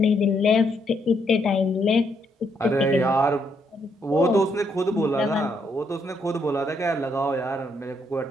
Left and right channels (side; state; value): both; normal; correlation 0.74